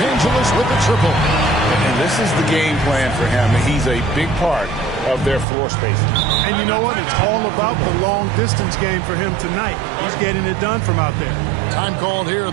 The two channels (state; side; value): drops out; left; at 5.5 s